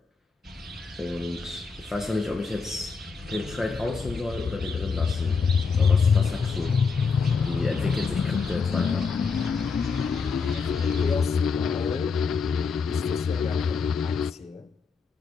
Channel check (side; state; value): right; quieter; 5.0 dB